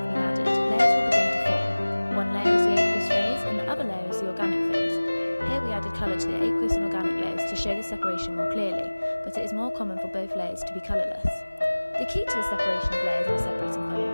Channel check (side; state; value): both; inverted; correlation -1.00